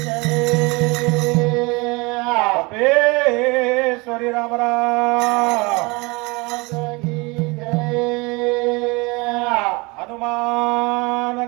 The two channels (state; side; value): quieter; left; 26.2 dB